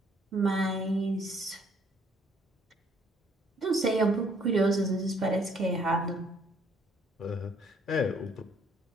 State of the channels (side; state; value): both; normal; correlation 0.64